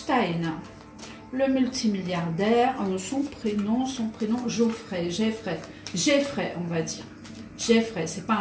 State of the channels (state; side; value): identical; both; correlation 1.00